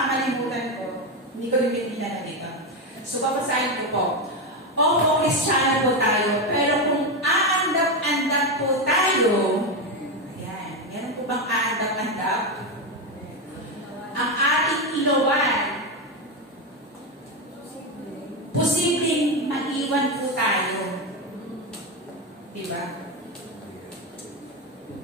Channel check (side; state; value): both; normal; correlation 0.11